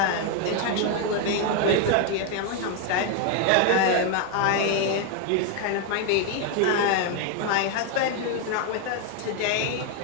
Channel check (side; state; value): both; different; correlation 0.01